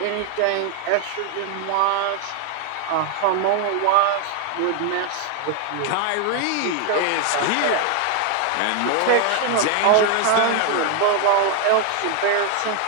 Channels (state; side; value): different; both; correlation 0.01